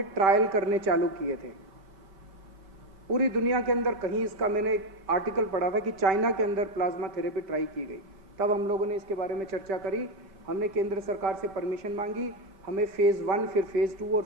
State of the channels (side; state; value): left; late; 5.1 ms